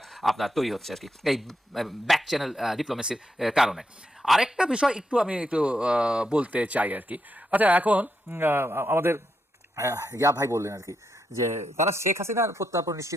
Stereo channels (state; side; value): normal; both; correlation 0.82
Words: আপনার তৈরি হচ্ছে আর কি, এই ব্যাক চ্যানেল ডিপ্লোমেসির কারণে। আরেকটা বিষয় একটু আমি একটু বলতে চাই আর কি। আচ্ছা, এখন আমাদের ইয়া ভাই বললেন আর কি যে তারা শেখ হাসিনার প্রত্যার্পণ